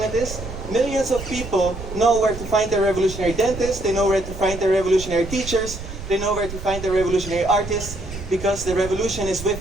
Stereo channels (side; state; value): right; noise; rumble, 10 dB below the sound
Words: it is? Millions of people know where to find their revolutionary dentists, they know where to find their revolutionary teachers, they know where to find their revolutionary artists, because the revolution is